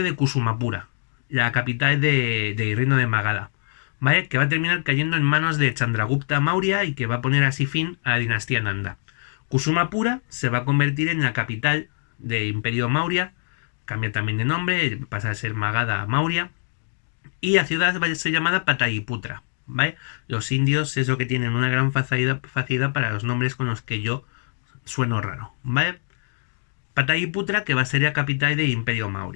de Kusumapura, la capital del reino de Magadha, ¿vale? Que va a terminar cayendo en manos de Chandragupta Maurya y que va a poner así fin a la dinastía Nanda. Kusumapura se va a convertir en la capital del Imperio Maurya, cambia también de nombre, pasa a ser Magadha Maurya, y la ciudad va a ser llamada Pataliputra, ¿vale? Los indios es lo que tienen una gran facilidad para los nombres con los que yo sueno raro, ¿vale? Pataliputra, que va a ser la capital del Imperio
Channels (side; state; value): right; silent; digital silence